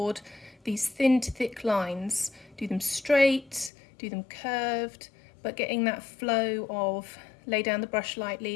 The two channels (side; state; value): right; drops out; at 3.7 s